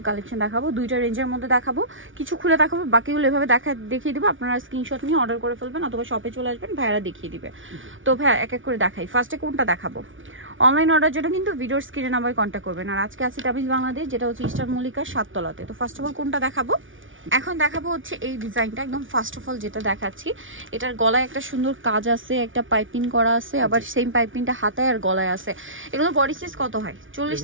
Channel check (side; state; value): left; late; 0.57 ms